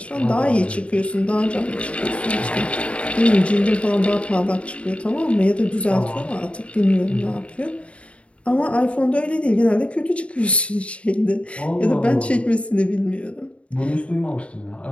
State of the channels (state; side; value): late; right; 0.062 ms